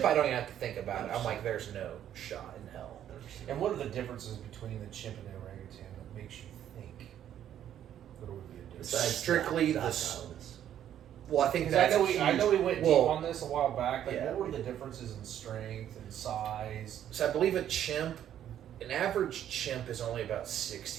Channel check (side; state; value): left; quieter; 10.6 dB